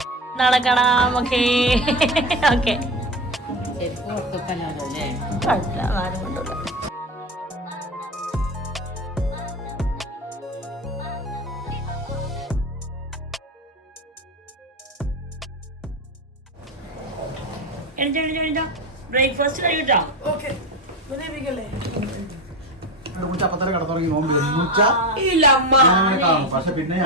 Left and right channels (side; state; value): both; normal; correlation 0.22